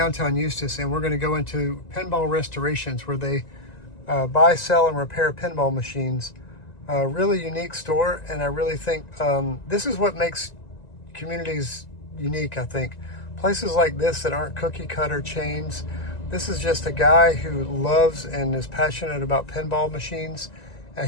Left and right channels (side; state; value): right; late; 1.9 ms